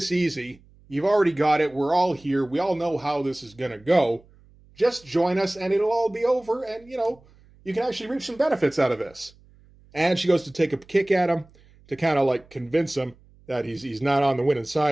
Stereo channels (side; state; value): right; noise; hum, 28 dB below the sound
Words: easy. You've already got it. We're all here. We all know how this is going to go. Just join us and it'll all be over. And, you know, you can actually reap some benefits out of this. And she goes to take a kick at him to kind of like convince him that he's not on the winning